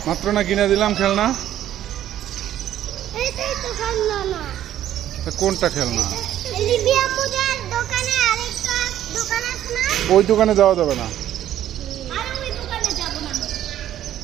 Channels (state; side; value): quieter; left; 11.8 dB